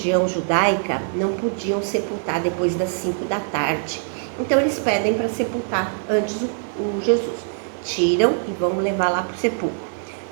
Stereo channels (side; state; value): left; silent; digital silence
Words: judaica não podiam sepultar depois das 5 da tarde. Então eles pedem para sepultar antes o Jesus. Tiram e vão levar lá para o sepulcro.